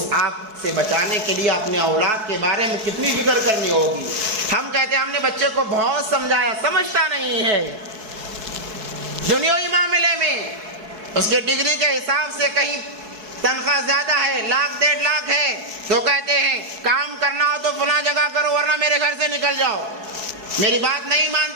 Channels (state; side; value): late; left; 4.6 ms